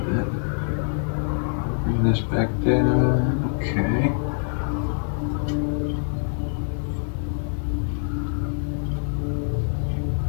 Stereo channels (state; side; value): silent; right; 60 dB below the other